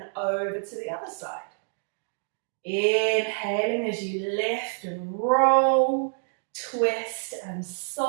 over to the other side. Inhaling as you lift and roll, twist and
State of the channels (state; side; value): silent; left; digital silence